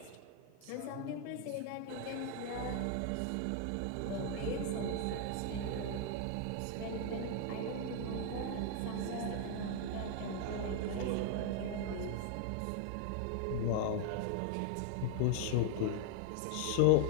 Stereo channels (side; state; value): both; different; correlation 0.00